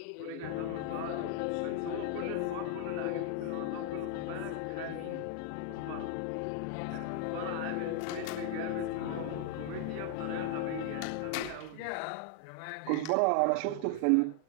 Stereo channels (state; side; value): different; both; correlation 0.00